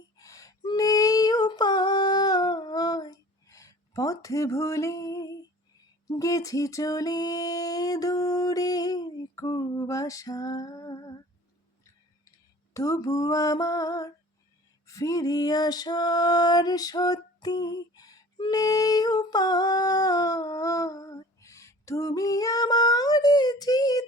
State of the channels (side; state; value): both; normal; correlation 0.45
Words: নেই উপায়। পথ ভুলে গেছি চলে দূরের কুয়াশা, তবু আমার ফিরে আসার সত্যি নেই উপায়। তুমি আমার